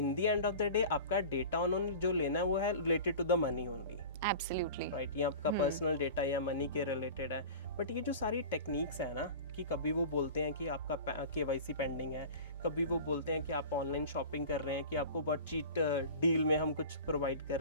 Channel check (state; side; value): inverted; both; correlation -0.37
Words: the end of the day आपका डेटा उन्होंने जो लेना है वो है related to the money only, absolutely right, ये आपका पर्सनल डेटा या मनी के रिलेटेड है। बट ये जो सारी टेक्निक्स है ना, कि कभी वो बोलते हैं कि आपका KYC पेंडिंग है, कभी वो बोलते हैं कि आप ऑनलाइन शॉपिंग कर रहे हैं, कि आपको बहुत चीट डील में हम कुछ प्रोवाइड कर